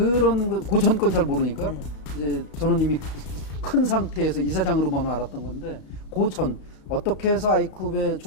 그 전 건 잘 모르니까 네. 이제 저는 이미 큰 상태에서 이사장으로만 알았던 건데 그 전 어떻게 해서 아이쿱의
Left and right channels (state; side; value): late; right; 34 ms